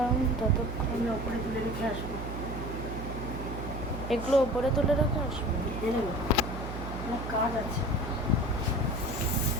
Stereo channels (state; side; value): noise; right; hum, 7 dB below the sound